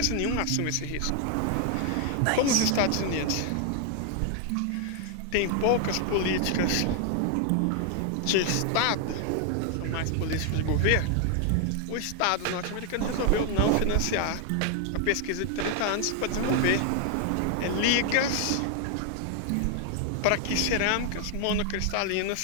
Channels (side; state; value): both; different; correlation 0.00